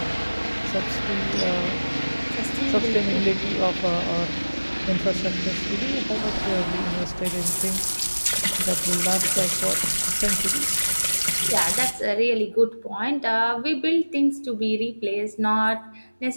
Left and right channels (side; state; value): both; inverted; correlation -1.00